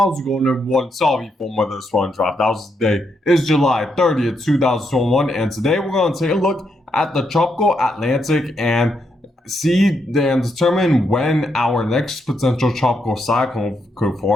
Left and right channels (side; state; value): both; normal; correlation 0.79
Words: it going, everyone? Sorry for weather swan drop. That was the day. It's July 30th, 2021, and today we're going to take a look at the tropical Atlantic and see and determine when our next potential tropical cyclone could